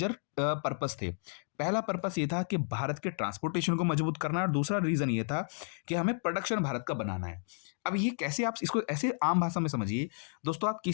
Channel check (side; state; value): right; silent; 56 dB below the other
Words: पर्पस थे। पहला पर्पस ये था कि भारत के ट्रांसपोर्टेशन को मजबूत करना है और दूसरा रीजन ये था कि हमें प्रोडक्शन भारत का बनाना है। अब ये कैसे, आप इसको ऐसे आम भाषा में समझिए। दोस्तों आप